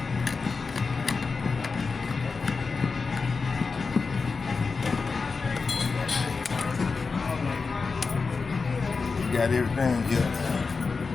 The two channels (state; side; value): quieter; right; 4.6 dB